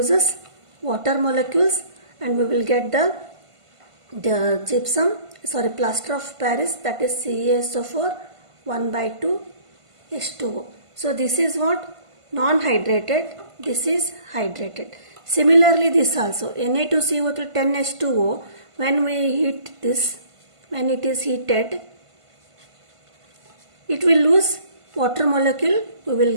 water molecules and we will get the plaster of Paris, that is CaSO4 1/2 H2O. So this is what? Non-hydrated, this is hydrated. Similarly this also, Na2CO3 10H2O, when we heat this, when it is heated, it will lose water molecule, we will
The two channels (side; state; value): left; late; 1.5 ms